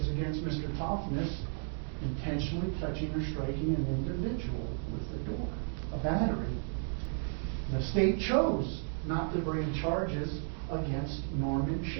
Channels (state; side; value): silent; left; 55 dB below the other